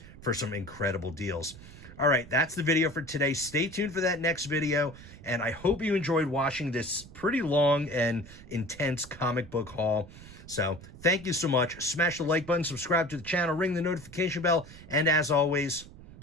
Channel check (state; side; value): noise; right; rumble, 18 dB below the sound